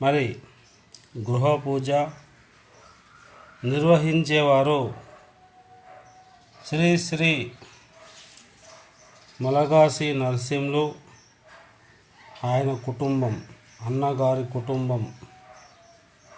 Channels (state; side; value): identical; both; correlation 1.00